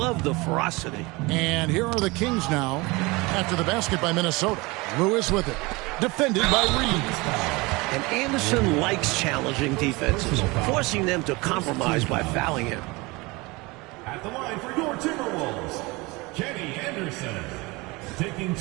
the ferocity. And here are the Kings now after the basket by Minnesota. Lewis with it. Defended by Reeves. And Anderson likes challenging defenses, forcing them to compromise by fouling him. At the line for your Timberwolves, Kenny Anderson, taking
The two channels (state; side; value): quieter; left; 24.0 dB